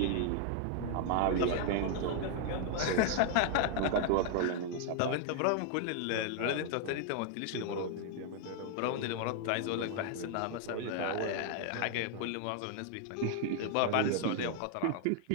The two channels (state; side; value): different; both; correlation 0.00